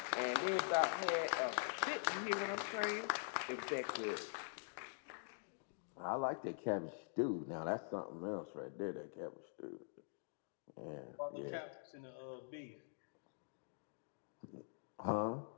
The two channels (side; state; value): right; silent; digital silence